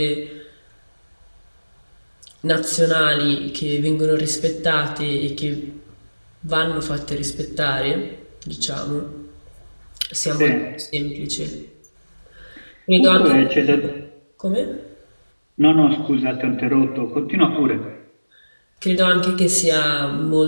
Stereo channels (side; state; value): both; inverted; correlation -1.00